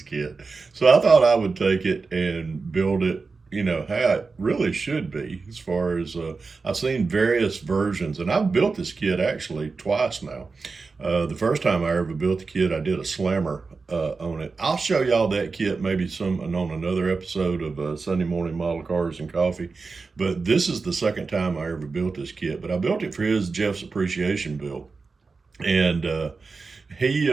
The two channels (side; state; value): left; quieter; 4.3 dB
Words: kit. So I thought I would take it and build it, how it really should be. As far as I've seen various versions, and I've built this kit actually twice now. The first time I ever built the kit, I did a slammer on it. I'll show y'all that kit maybe on another episode of Sunday Morning Model Cars and Coffee. But this is the second time I ever built this kit. But I built it for Jeff's appreciation build. And he,